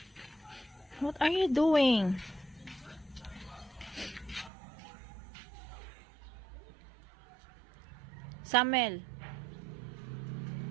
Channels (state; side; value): drops out; left; at 4.5 s